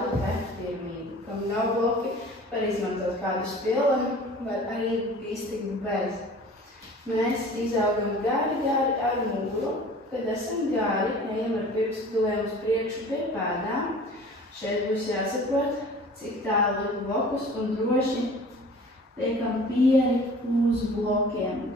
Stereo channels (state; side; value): normal; both; correlation 0.45